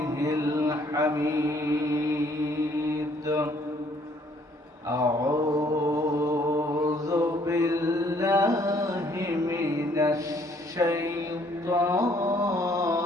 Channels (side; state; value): both; normal; correlation 0.63